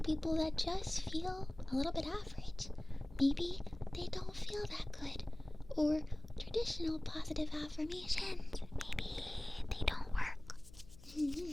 that just feel a little bit average. Maybe they don't feel that good. Or traditional positive affirmations, maybe they don't work.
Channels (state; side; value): noise; left; hum, 19 dB below the sound